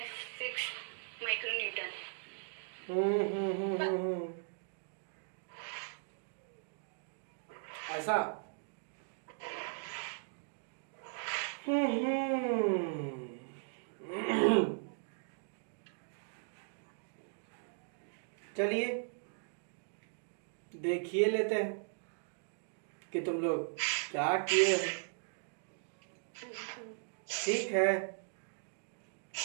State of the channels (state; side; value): silent; left; digital silence